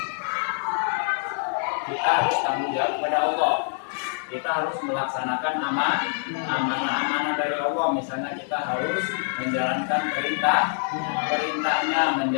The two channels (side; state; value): right; silent; digital silence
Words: Kita harus tanggung jawab kepada Allah. Kita harus melaksanakan amanah dari Allah. Misalnya kita harus menjalankan perintahnya,